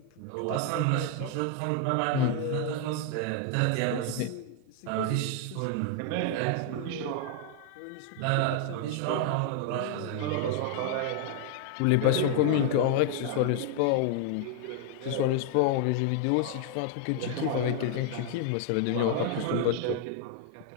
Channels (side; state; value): both; different; correlation 0.00